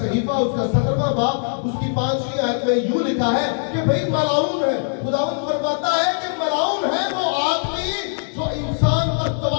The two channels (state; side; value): silent; right; digital silence